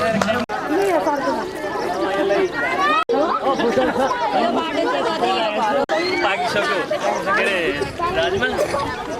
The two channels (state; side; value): identical; both; correlation 1.00